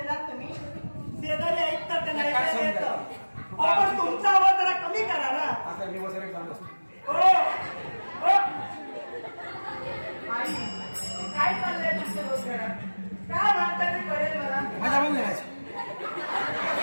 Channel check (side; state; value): both; inverted; correlation -1.00